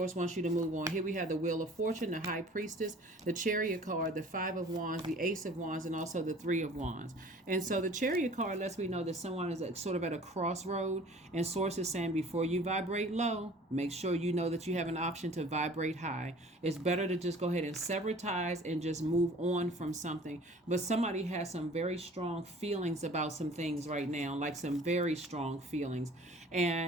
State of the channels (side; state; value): both; normal; correlation 0.48